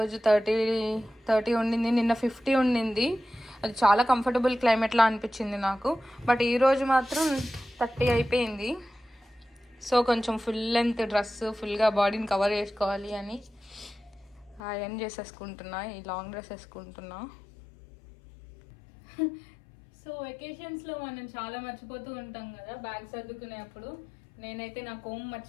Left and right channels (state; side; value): drops out; right; at 14.6 s